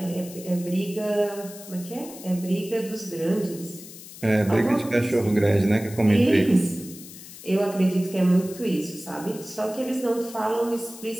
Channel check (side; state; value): left; noise; hiss, 16 dB below the sound